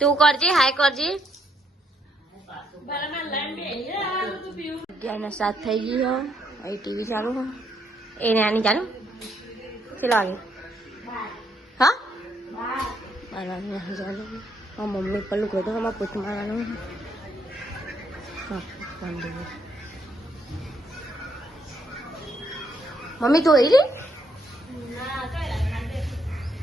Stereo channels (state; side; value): normal; both; correlation 0.73